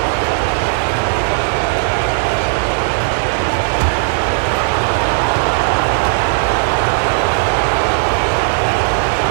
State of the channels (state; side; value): silent; left; digital silence